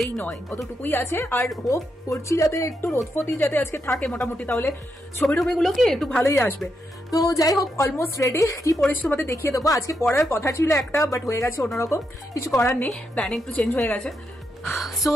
নয় অতটুকুই আছে। আর হোপ করছি যাতে একটু রোদফতি যাতে আজকে থাকে মোটামুটি, তাহলে ছবি টবিগুলো কি একটু ভালোই আসবে। তো যাই হোক, অলমোস্ট রেডি। কি পরেছি তোমাদের দেখিয়ে দেবো। আজকে পড়ার কথা ছিল একটা, বাট হয়ে গেছে অন্যরকম, কিছু করার নেই, প্ল্যানিং একটু চেঞ্জ হয়ে গেছে। সো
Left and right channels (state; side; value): normal; both; correlation 0.82